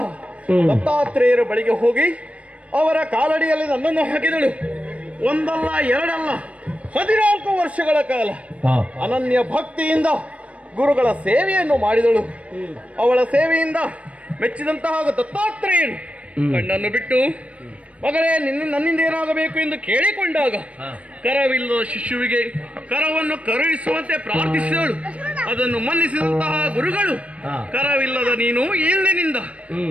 ದತ್ತಾತ್ರೇಯರ ಬಳಿಗೆ ಹೋಗಿ ಅವರ ಕಾಲಡಿಯಲ್ಲಿ ನನ್ನನ್ನು ಹಾಕಿದಳು. ಒಂದಲ್ಲ ಎರಡಲ್ಲ 14 ವರ್ಷಗಳ ಕಾಲ ಅನನ್ಯ ಭಕ್ತಿಯಿಂದ ಗುರುಗಳ ಸೇವೆಯನ್ನು ಮಾಡಿದಳು. ಅವಳ ಸೇವೆಯಿಂದ ಮೆಚ್ಚಿದಂತಹ ದತ್ತಾತ್ರೇಯನು ಕಣ್ಣನ್ನು ಬಿಟ್ಟು ಮಗಳೇ ನನ್ನಿಂದ ಏನಾಗಬೇಕು ಎಂದು ಕೇಳಿಕೊಂಡಾಗ ಕರವಿಲ್ಲದ ಶಿಶುವಿಗೆ ಕರವನ್ನು ಕರುಣಿಸುವಂತೆ ಪ್ರಾರ್ಥಿಸಿದಳು. ಅದನ್ನು ಮನ್ನಿಸಿದಂತಹ ಗುರುಗಳು ಕರವಿಲ್ಲದ ನೀನು ಇಂದಿನಿಂದ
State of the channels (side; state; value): left; late; 0.064 ms